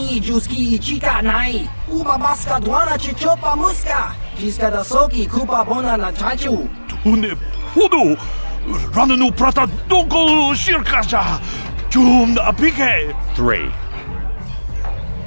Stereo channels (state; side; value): inverted; both; correlation -1.00